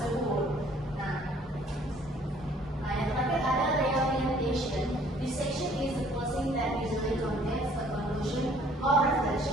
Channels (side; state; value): both; normal; correlation 0.58